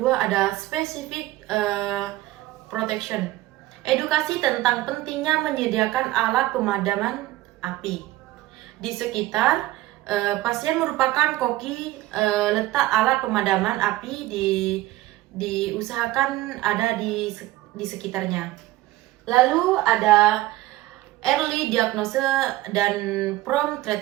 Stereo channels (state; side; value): quieter; left; 16.7 dB